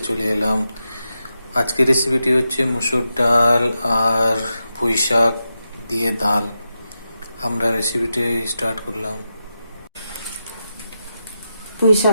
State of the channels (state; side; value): inverted; both; correlation -0.88